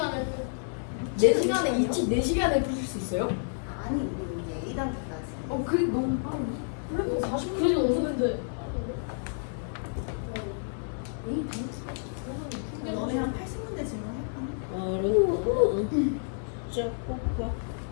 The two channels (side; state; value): right; silent; 56 dB below the other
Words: 4시간에 4시간에 풀 수 있어요? 아니 우리 이제 A단계까지. 그게 너무 빠르네. 그래도 40분 그래도 없는데. 너네 한 80문제 질문할까? 어려워. 진짜 꽃밭.